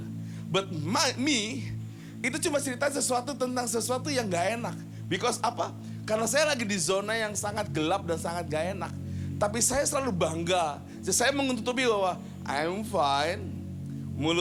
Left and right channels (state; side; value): identical; both; correlation 1.00